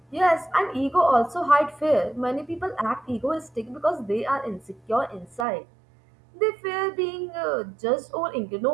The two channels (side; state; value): left; drops out; at 5.5 s